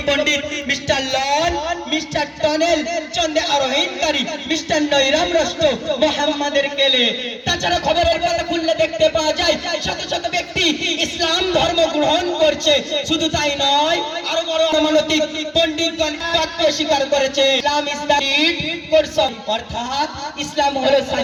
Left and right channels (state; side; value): identical; both; correlation 1.00